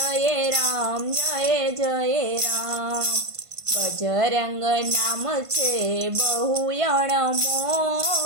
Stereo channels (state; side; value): late; left; 1.5 ms